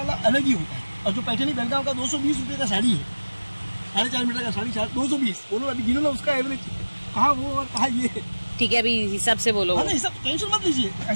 अलग ही होता है। और जो पैठनी बेलगांव का 220 रुपये का साड़ी है, 4.5 मीटर का साड़ी 220, बोलो अभी गिनो ना उसका एवरेज, कहाँ वो और कहाँ ये। ठीक है, अभी हिसाब से बोलो। हाँ, हिसाब टेंशन मत लीजिए,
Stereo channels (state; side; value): inverted; both; correlation -1.00